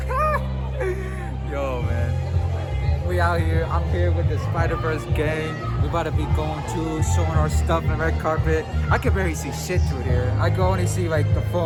Yo, man. We out here. I'm here with the Spider-Verse gang. We about to be going to, showing our stuff in the red carpet. I can barely see shit through here. I can only see like the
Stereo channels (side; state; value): both; identical; correlation 1.00